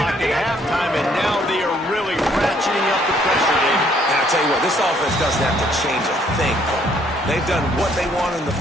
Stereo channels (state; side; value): normal; both; correlation 0.65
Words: at halftime, and now they are really ratcheting up the pressure, David. And I'll tell you what, this offense doesn't have to change a thing. They've done what they wanted in the